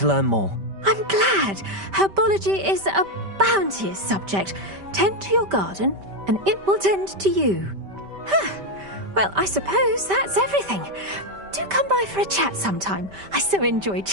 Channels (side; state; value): left; late; 5.1 ms